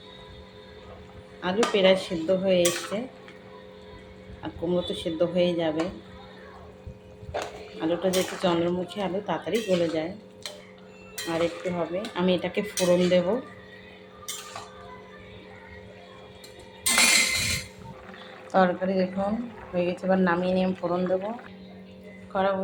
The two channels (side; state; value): both; identical; correlation 1.00